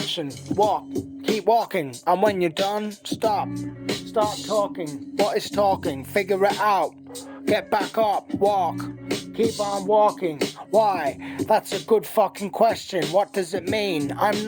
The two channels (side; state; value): both; identical; correlation 1.00